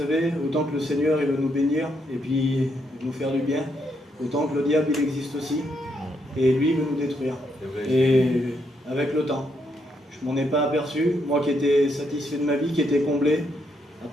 autant que le Seigneur il veut nous bénir et puis nous faire du bien, autant que le diable il existe aussi. Et lui il veut nous détruire. Et avec le temps, je m'en ai pas aperçu, moi qui étais satisfait de ma vie, qui était comblé, à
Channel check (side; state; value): both; normal; correlation 0.77